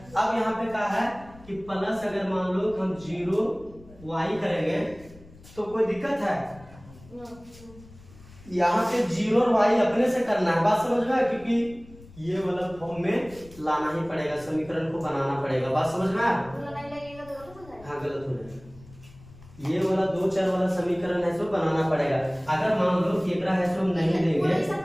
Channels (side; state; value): left; noise; rumble, 22 dB below the sound